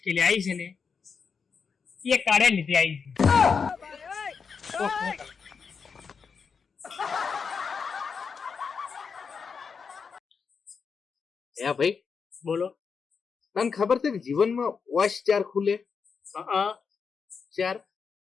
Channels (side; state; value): right; quieter; 5.7 dB